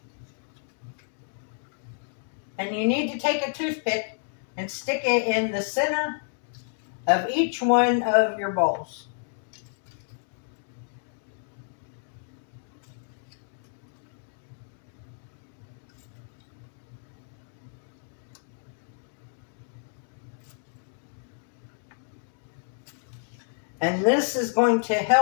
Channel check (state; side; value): silent; right; digital silence